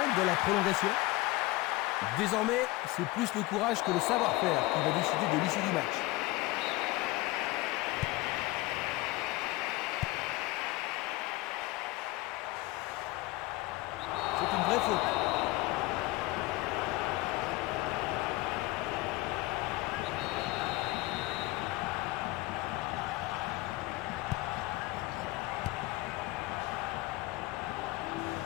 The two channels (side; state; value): right; quieter; 20.1 dB